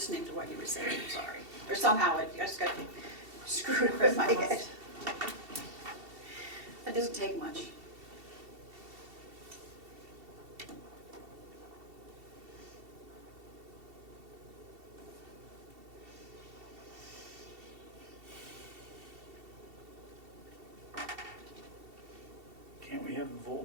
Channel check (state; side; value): late; left; 2.7 ms